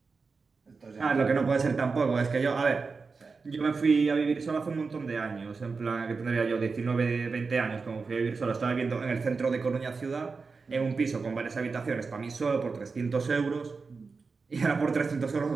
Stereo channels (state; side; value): quieter; left; 4.6 dB